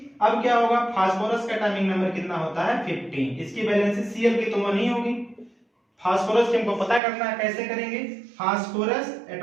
अब क्या होगा, फास्फोरस का एटॉमिक नंबर कितना होता है 15। इसकी वैलेंसी Cl की तो 1 ही होगी। फास्फोरस की हमको पता करना है, कैसे करेंगे, फास्फोरस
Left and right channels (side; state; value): left; drops out; at 7.0 s